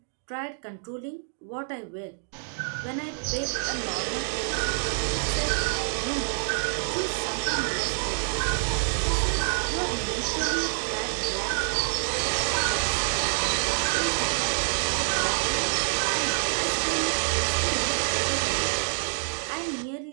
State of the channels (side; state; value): left; silent; digital silence